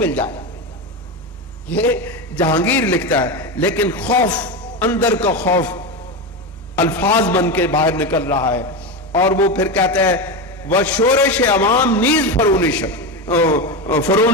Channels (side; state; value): both; normal; correlation 0.17